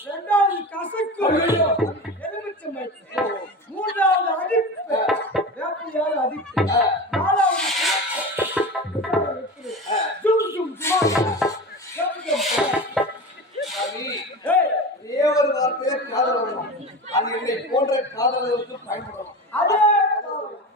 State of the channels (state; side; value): normal; both; correlation 0.29